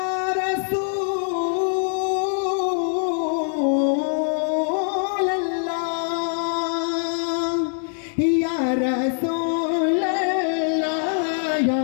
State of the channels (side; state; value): right; silent; 61 dB below the other